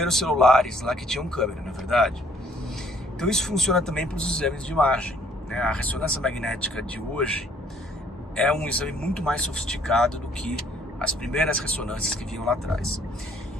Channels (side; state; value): both; normal; correlation 0.61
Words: celulares lá que tinham câmera, não é verdade? Então isso funciona também para os exames de imagem, né? A ressonância magnética de hoje é um exame muito mais sofisticado do que as primeiras ressonâncias que vinham lá atrás.